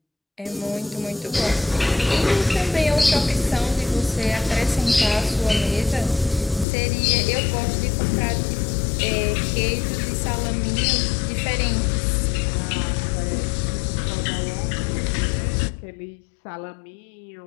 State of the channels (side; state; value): right; drops out; at 6.7 s